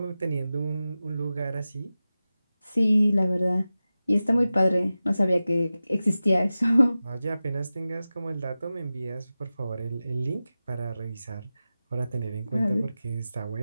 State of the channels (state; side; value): inverted; both; correlation -0.95